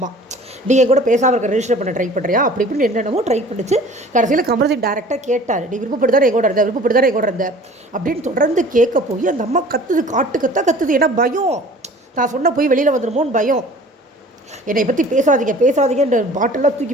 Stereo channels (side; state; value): both; normal; correlation 0.47